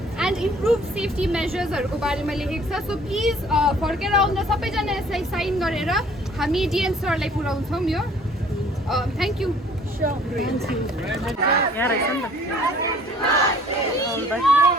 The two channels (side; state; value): both; normal; correlation 0.55